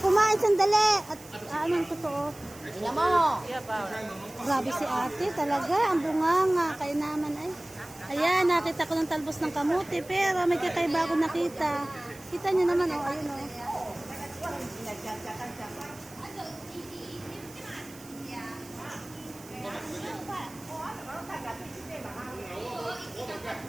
sandali. At anong totoo? Ina mo! Grabe si ate talaga. Ang bunganga. Kaya naman ay. Ayan, nakita ko ng talbos ng kamuti. Pero may kakaiba ako nakita. Kita niyo naman, oh. Ayun, oh.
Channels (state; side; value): noise; right; hiss, 20 dB below the sound